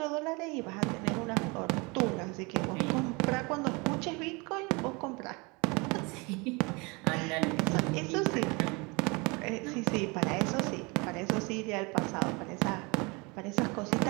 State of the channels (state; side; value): quieter; left; 27.7 dB